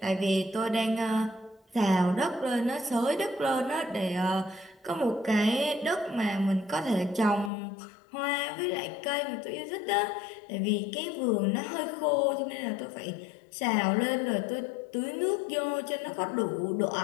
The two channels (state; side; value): drops out; right; at 7.5 s